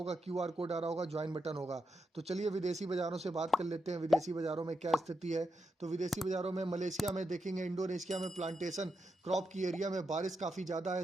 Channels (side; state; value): both; normal; correlation 0.85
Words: क्यूआर कोड आ रहा होगा, ज्वाइन बटन होगा। तो चलिए विदेशी बाजारों से बात कर लेते हैं। विदेशी बाजारों में क्या स्थिति है, तो विदेशी बाजारों में मलेशिया में देखेंगे, इंडोनेशिया में प्लांटेशन क्रॉप की एरिया में बारिश काफ़ी ज़्यादा है,